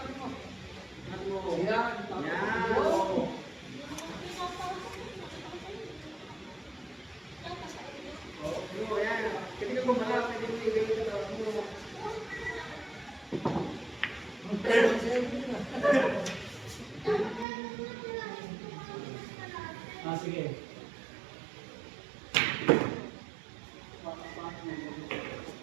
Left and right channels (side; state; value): left; drops out; at 17.4 s